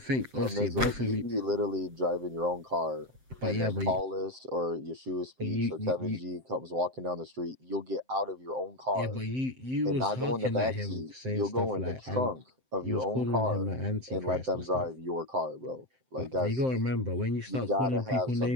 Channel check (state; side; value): late; left; 7.7 ms